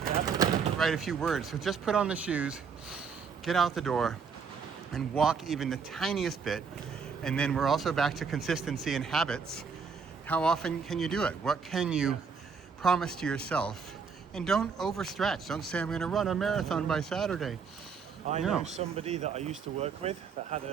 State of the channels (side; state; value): left; quieter; 5.8 dB